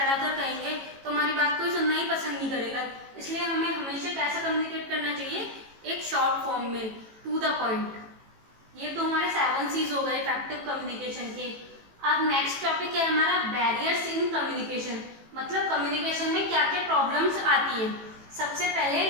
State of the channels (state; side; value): late; left; 18 ms